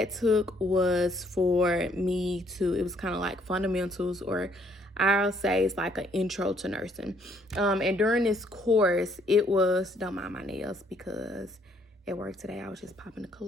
took was for me to, it was kind of like fundamentals, or I'll say it's like an intro to nursing. And during this course, it was, don't mind my nails because at work today I was just popping the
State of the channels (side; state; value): both; normal; correlation 0.66